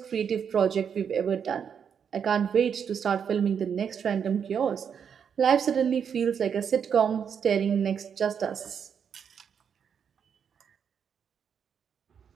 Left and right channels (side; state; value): left; quieter; 7.4 dB